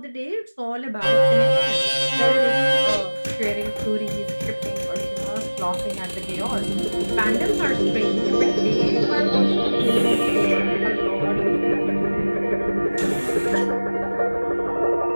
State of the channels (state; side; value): inverted; both; correlation -1.00